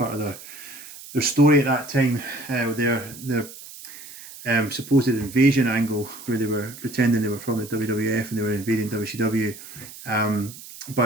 of their story at that time, their supposed invasion angle, where they were pretending they were from the WWF and they were invading WCW.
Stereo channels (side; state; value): right; noise; hiss, 15 dB below the sound